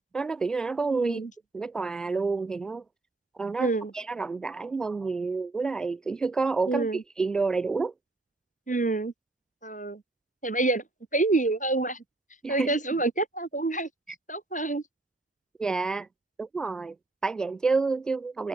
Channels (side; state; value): left; quieter; 3.2 dB